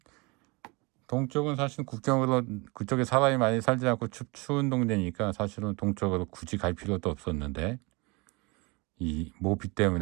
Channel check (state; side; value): quieter; left; 27.3 dB